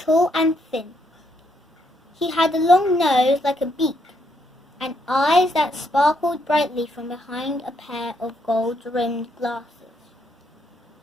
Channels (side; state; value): both; normal; correlation 0.75